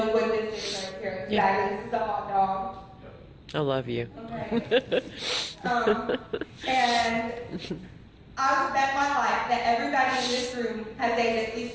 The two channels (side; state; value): both; identical; correlation 1.00